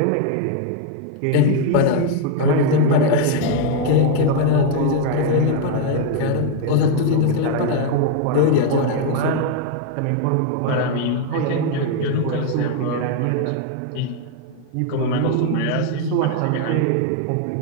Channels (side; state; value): both; different; correlation 0.01